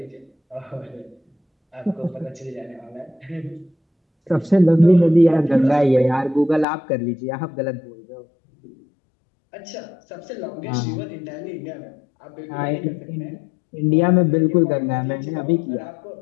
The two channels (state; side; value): drops out; right; at 6.7 s